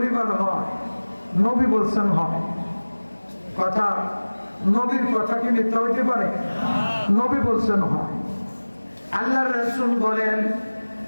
হয়? নবী বলছেন হয়। কথা, নবীর কথা কি মিথ্যা হইতে পারে? নবী বলছেন হয়। আল্লাহর রাসূল বলেন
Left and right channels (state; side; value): inverted; both; correlation -1.00